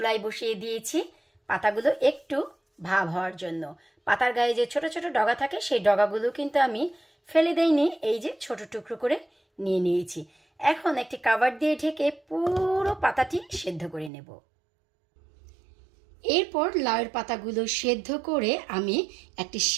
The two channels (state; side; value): drops out; left; at 14.1 s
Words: বসিয়ে দিয়েছি, পাতাগুলো একটু ভাব হওয়ার জন্য। পাতার গায়ে যে ছোট ছোট ডগা থাকে সেই ডগাগুলো কিন্তু আমি ফেলে দেইনি, এই যে ছোট টুকরো করে নিয়ে নিয়েছি। এখন একটি কাভার দিয়ে ঢেকে পুরো পাতাটি সেদ্ধ করে নেব। এরপর লাউয়ের পাতাগুলো সেদ্ধ করে আমি একটি